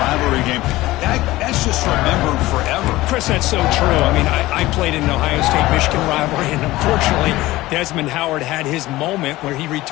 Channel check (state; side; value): quieter; right; 18.0 dB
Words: game, that's just remembered forever. Chris, that's so true. I mean, I played in the Ohio State-Michigan rivalry, and unfortunately, Desmond Howard had his moment where he